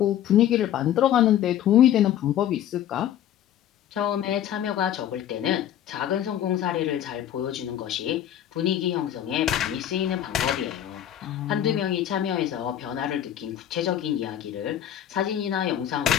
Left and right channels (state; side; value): quieter; right; 10.9 dB